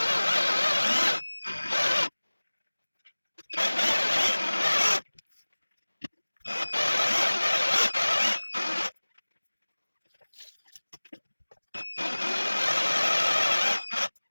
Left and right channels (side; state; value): both; inverted; correlation -1.00